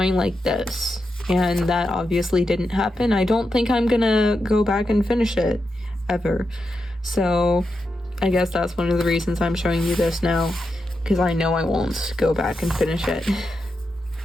like this. And that obviously didn't happen. I don't think I'm gonna go back and finish it, ever. So I guess that's one of the reasons I'm showing you this now, because I know I won't go back and finish it.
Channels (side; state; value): both; normal; correlation 0.87